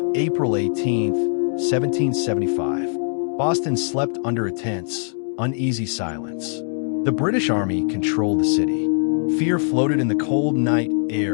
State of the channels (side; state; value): right; silent; 58 dB below the other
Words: April 18th, 1775. Boston slept under a tense, uneasy silence. The British Army controlled the city. Fear floated in the cold night